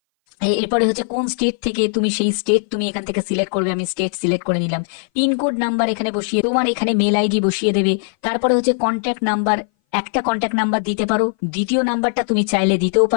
এরপরে হচ্ছে কোন স্টেট থেকে, তুমি সেই স্টেট তুমি এখান থেকে সিলেক্ট করবে, আমি স্টেট সিলেক্ট করে নিলাম। পিনকোড নাম্বার এখানে বসিয়ে, তোমার এখানে মেল আইডি বসিয়ে দেবে। তারপরে হচ্ছে কন্ট্যাক্ট নাম্বার, একটা কন্ট্যাক্ট নাম্বার দিতে পারো, দ্বিতীয় নাম্বারটা তুমি চাইলে দিতেও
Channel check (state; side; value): silent; right; 60 dB below the other